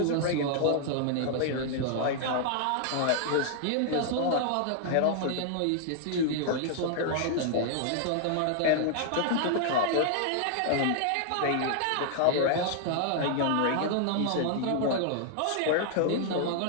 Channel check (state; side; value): different; both; correlation 0.00